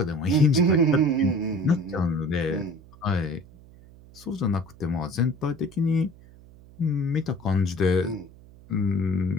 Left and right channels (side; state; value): right; noise; hum, 23 dB below the sound